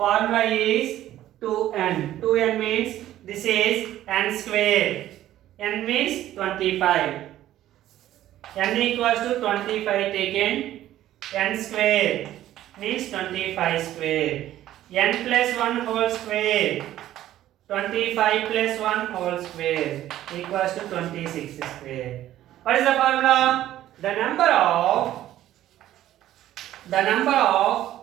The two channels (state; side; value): quieter; left; 13.2 dB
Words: is 2n. 2n means this is n square. N means 25. N equals to 25 taken. N square means 25 square. N plus 1 whole square. 25 plus 1 whole square equals to 26 square. What is the formula? The number of